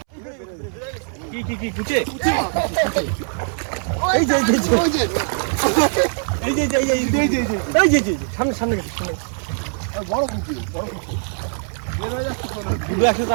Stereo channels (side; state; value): left; silent; 65 dB below the other